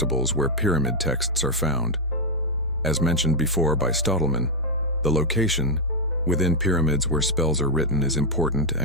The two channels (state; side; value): normal; both; correlation 0.01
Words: where pyramid texts are found. As mentioned before by Stottleman, the location within pyramids where spells are written is important